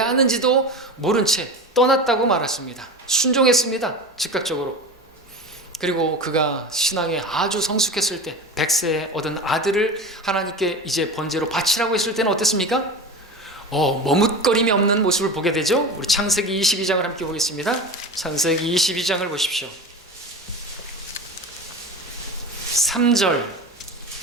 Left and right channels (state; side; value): normal; both; correlation 0.29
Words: 하는지도 모른 채 떠났다고 말했습니다. 순종했습니다. 즉각적으로. 그리고 그가 신앙에 아주 성숙했을 때 100세에 얻은 아들을 하나님께 이제 번제로 바치라고 했을 때는 어땠습니까? 머뭇거림이 없는 모습을 보게 되죠. 우리 창세기 22장을 함께 보겠습니다. 창세기 22장을 보십시오. 3절